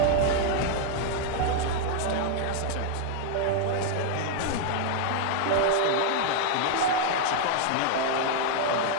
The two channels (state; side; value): different; both; correlation 0.00